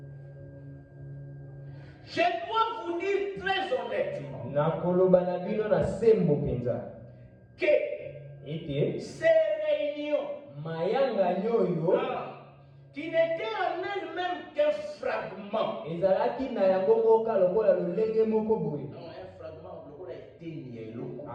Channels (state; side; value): identical; both; correlation 1.00